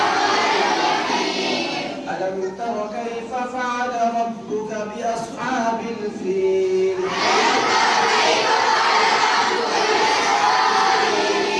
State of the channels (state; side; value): identical; both; correlation 1.00